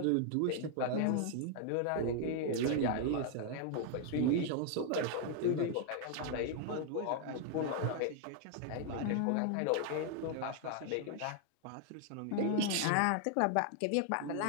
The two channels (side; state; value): both; different; correlation 0.00